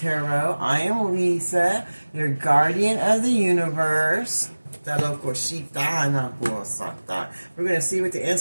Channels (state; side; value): inverted; both; correlation -1.00